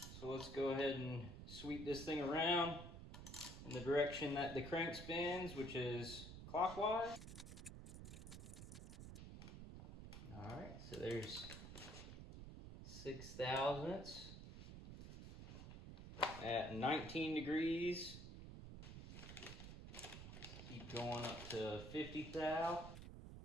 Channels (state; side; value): noise; right; rumble, 10 dB below the sound